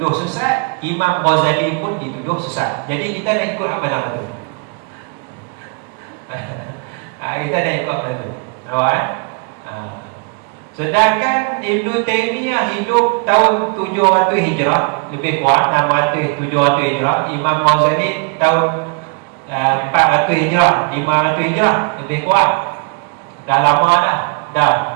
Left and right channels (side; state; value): left; quieter; 33.4 dB